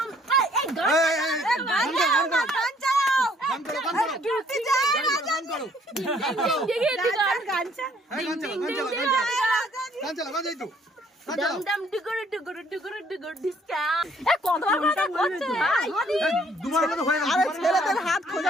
ছেলেদের হাত খোঁজা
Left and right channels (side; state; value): both; normal; correlation 0.62